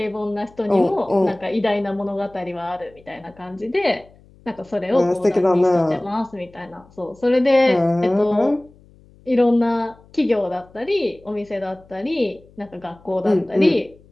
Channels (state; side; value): noise; left; hum, 27 dB below the sound